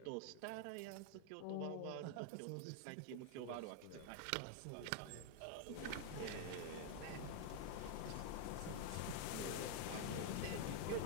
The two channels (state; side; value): different; both; correlation 0.00